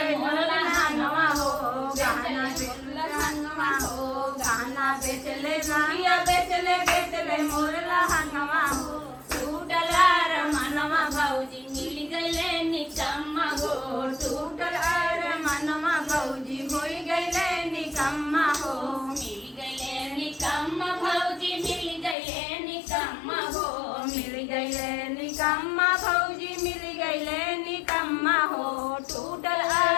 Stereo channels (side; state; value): right; drops out; at 22.2 s